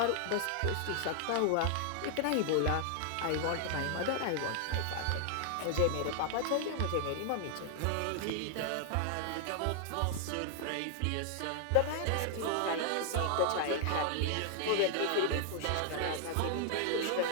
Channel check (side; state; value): both; different; correlation 0.00